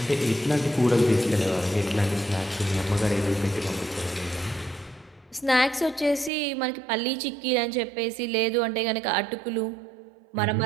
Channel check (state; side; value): drops out; left; at 6.3 s